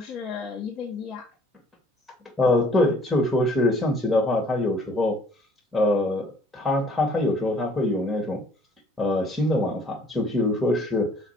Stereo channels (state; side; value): normal; both; correlation 0.58